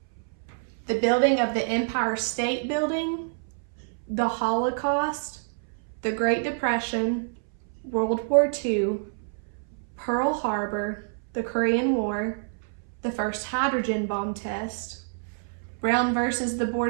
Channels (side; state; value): left; silent; 60 dB below the other